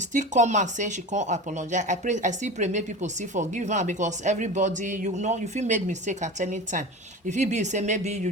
come out say she come apologize, I still pray make people still forgive her, because everybody, you know, you fit make mistake at any time. If it be say maybe you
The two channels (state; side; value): normal; both; correlation 0.31